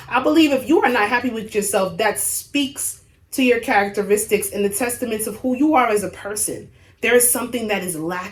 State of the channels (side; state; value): both; identical; correlation 1.00